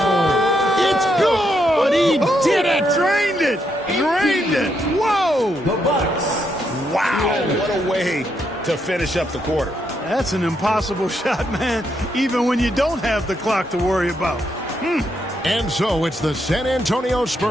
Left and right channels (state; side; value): normal; both; correlation 0.78